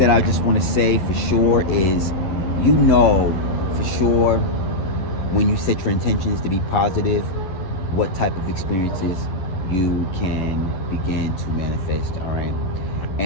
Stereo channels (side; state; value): right; late; 11 ms